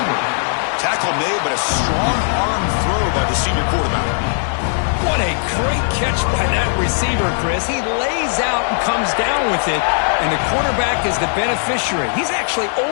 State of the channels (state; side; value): silent; right; digital silence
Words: Tackle made, but a strong arm throw by the senior quarterback. What a great catch by that receiver, Chris. He lays out and comes down with it, and the quarterback is the beneficiary. He's actually